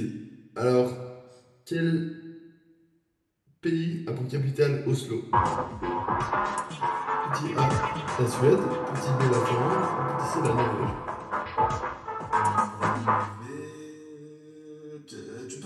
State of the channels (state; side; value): identical; both; correlation 1.00